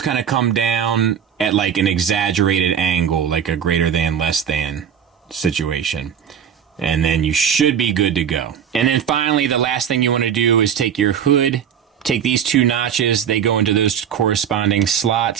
kind of come down at like an exaggerated angle, like a greater than, less than situation. And then you should be good to go. And then finally, the last thing you want to do is take your hood, take these two notches, they go into those corresponding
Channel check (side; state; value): left; quieter; 8.3 dB